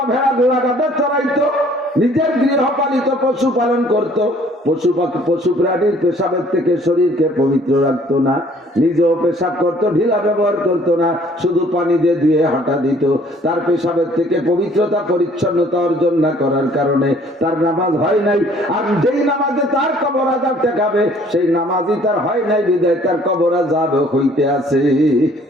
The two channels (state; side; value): normal; both; correlation 0.57